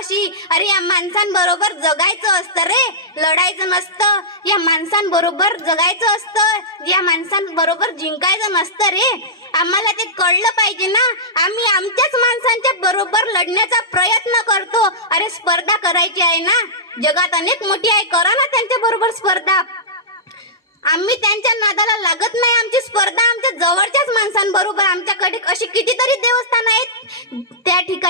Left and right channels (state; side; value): normal; both; correlation -0.14